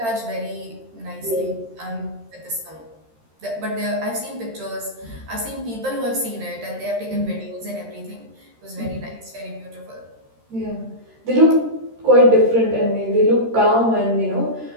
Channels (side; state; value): left; late; 13 ms